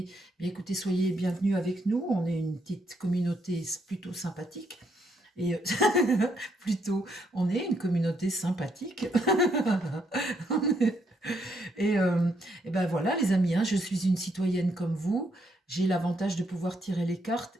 Bien écoutez, soyez bienvenus avec nous. On est une petite communauté plutôt sympathique. Et plutôt, on est une communauté sympathique. Et, euh, et ben voilà, les amis, hein, je suis une citoyenne comme vous. J'ai l'avantage de pouvoir tirer les cartes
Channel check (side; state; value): both; normal; correlation 0.75